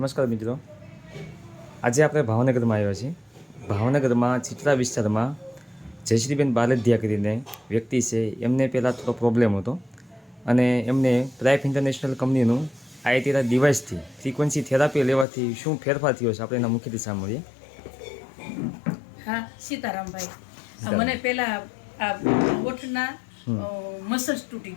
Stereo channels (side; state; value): right; drops out; at 15.2 s